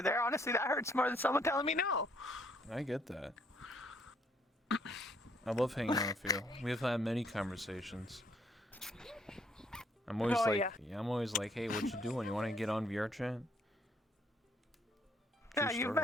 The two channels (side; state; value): both; normal; correlation 0.67